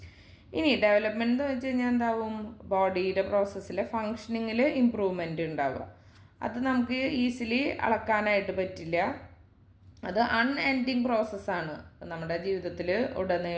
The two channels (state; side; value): identical; both; correlation 1.00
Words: ഇനി ഡെവലപ്മെൻറ്റ് എന്ന് വെച്ച് കഴിഞ്ഞാൽ എന്താവും, ബോഡിയുടെ പ്രോസസ്സിലെ ഫങ്ഷനിങ്ങിൽ ഇമ്പ്രൂവ്മെൻറ്റ് ഉണ്ടാവുക. അത് നമുക്ക് ഈസിലി അളക്കാനായിട്ട് പറ്റില്ല. അത് അൺഎൻഡിങ് പ്രോസസ്സാണ്. നമ്മുടെ ജീവിതത്തിൽ